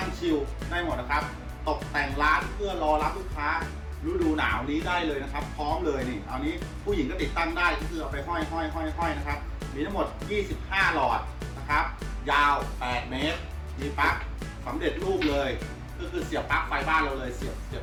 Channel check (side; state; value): both; identical; correlation 1.00